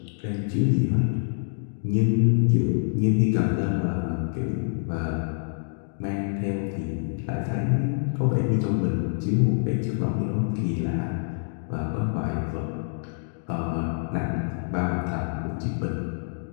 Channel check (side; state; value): right; silent; digital silence